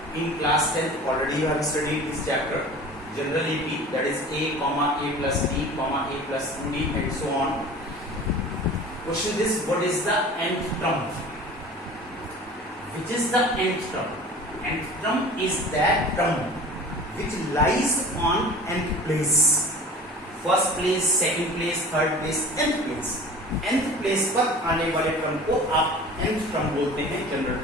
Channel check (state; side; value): normal; both; correlation 0.40